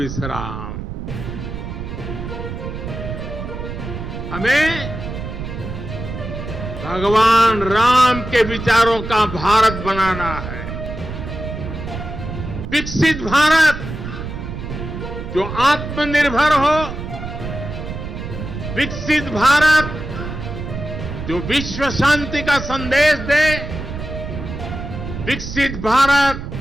हमें भगवान राम के विचारों का भारत बनाना है। विकसित भारत जो आत्मनिर्भर हो, विकसित भारत जो विश्व शांति का संदेश दे, विकसित भारत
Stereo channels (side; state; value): right; noise; rumble, 7 dB below the sound